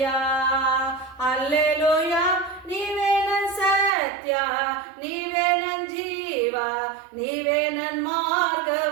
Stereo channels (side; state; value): left; drops out; at 3.9 s